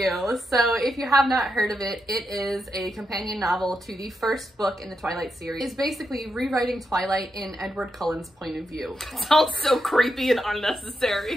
So if you have not heard of it, it is a companion novel to the first book in the Twilight series. It's basically rewriting Twilight in Edward Cullen's point of view. Sounds so creepy and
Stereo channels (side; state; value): both; normal; correlation 0.85